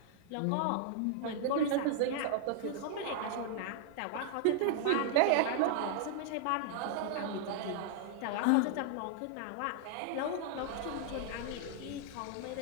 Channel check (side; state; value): both; different; correlation -0.01